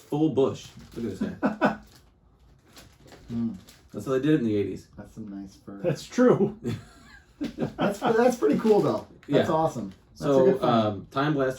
bush. Look at this guy. That's how they did it in the 80s. That's some nice fur. That's true. That's pretty cool though. That's awesome. That's a good So Time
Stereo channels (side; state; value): both; identical; correlation 1.00